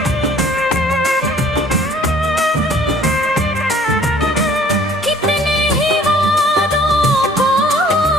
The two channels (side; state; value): both; normal; correlation 0.55